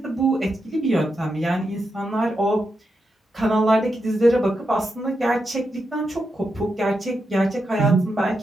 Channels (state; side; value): normal; both; correlation 0.86